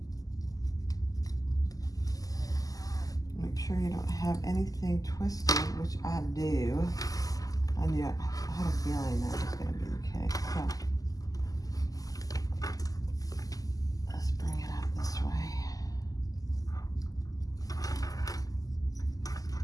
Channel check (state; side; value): late; right; 0.17 ms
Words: Make sure you don't have anything twisted, which I do. I had a feeling that was going to be the case. So let's bring it up this way.